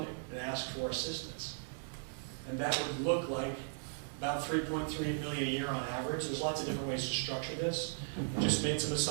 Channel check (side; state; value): left; silent; digital silence